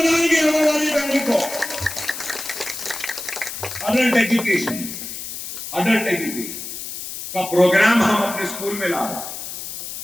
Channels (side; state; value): left; noise; hiss, 8 dB below the sound